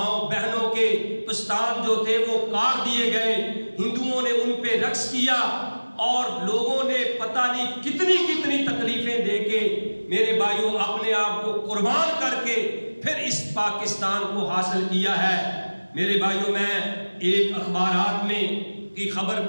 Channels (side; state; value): both; inverted; correlation -1.00